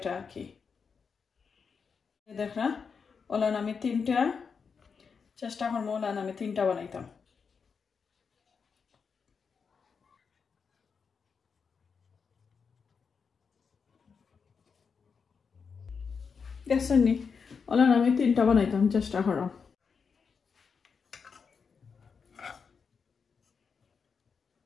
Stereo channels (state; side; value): quieter; right; 5.8 dB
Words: আর কি দেখা ওলান আমি 3টা চেষ্টা করবো ওলান আমি 3টা বানাইতাম দেখছেন নি ওলান আমি 3টা বানাইতাম চেষ্টা করাম